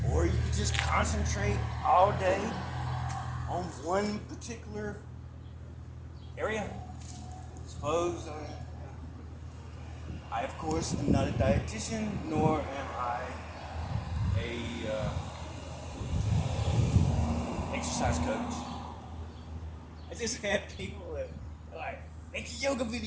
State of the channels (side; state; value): both; identical; correlation 1.00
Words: Or you can just concentrate all day on one particular area. Suppose I of course am not a dietitian, nor am I a exercise coach. I just have people that like make a yoga